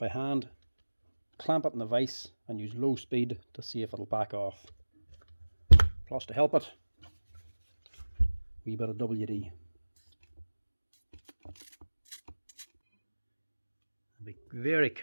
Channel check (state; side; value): inverted; both; correlation -1.00